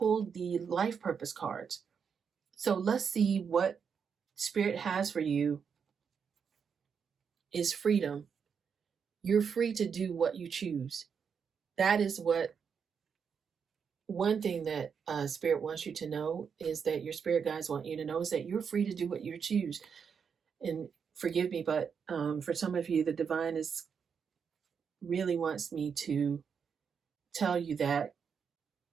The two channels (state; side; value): quieter; left; 6.6 dB